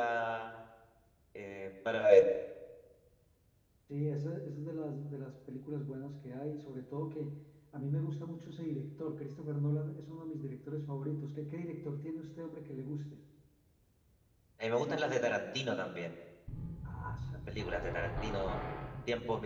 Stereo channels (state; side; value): identical; both; correlation 1.00